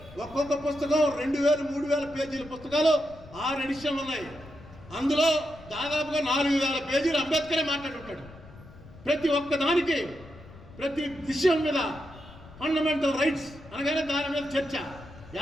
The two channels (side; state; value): left; noise; rumble, 19 dB below the sound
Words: ఒక్కొక్క పుస్తకం 2000, 3000 పేజీల పుస్తకాలు, 6 ఎడిషన్లు ఉన్నాయి. అందులో దాదాపుగా 4000 పేజీలు అంబేద్కరే మాట్లాడుంటాడు. ప్రతి ఒక్క దానికి, ప్రతి విషయం మీద ఫండమెంటల్ రైట్స్ అనగానే దాని మీద చర్చ.